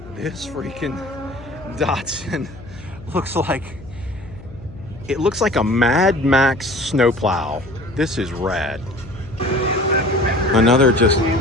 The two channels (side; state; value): left; noise; hum, 17 dB below the sound